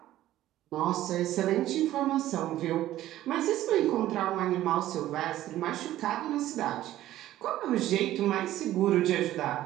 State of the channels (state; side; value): quieter; left; 14.0 dB